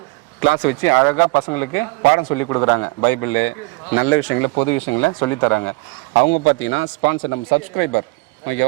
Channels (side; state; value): left; quieter; 24.8 dB